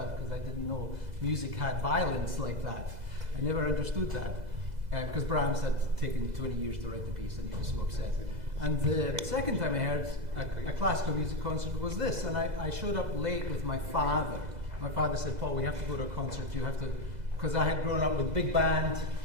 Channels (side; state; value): left; late; 2.0 ms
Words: because I didn't know music had violence like that. I never understood that because Brahms had taken 20 years to write the piece and he was so upset. And the second time I heard a classical music concert was this, and I showed up late with my father. My father said, "Paul, we have to go to a concert. You have to," because I had grown up with big band